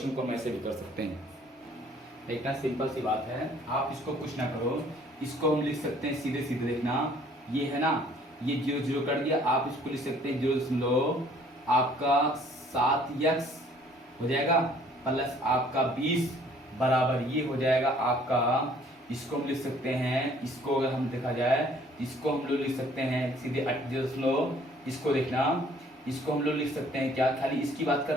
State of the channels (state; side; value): normal; both; correlation 0.58